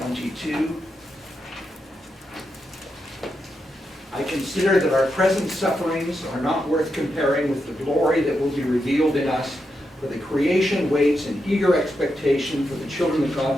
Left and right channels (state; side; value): normal; both; correlation 0.85